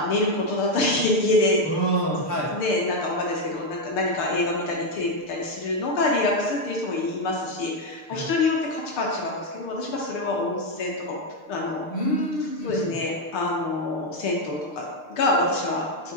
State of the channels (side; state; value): right; late; 6.7 ms